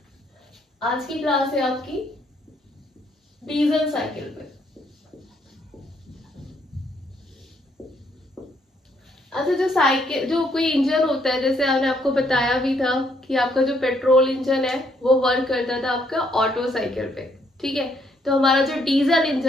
आज की क्लास है आपकी डीजल साइकिल पे। अच्छा, जो कोई इंजन होता है, जैसे हमने आपको बताया भी था कि आपका जो पेट्रोल इंजन है वो वर्क करता था आपका ऑटो साइकिल पे, ठीक है। तो हमारा जो डीजल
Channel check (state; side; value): normal; both; correlation 0.71